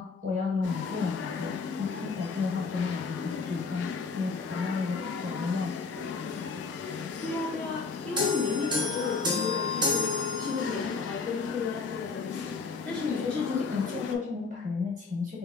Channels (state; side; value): quieter; right; 4.5 dB